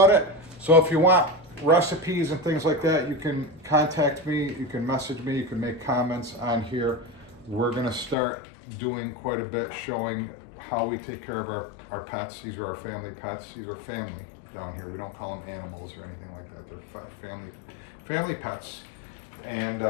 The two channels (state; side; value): drops out; right; at 8.2 s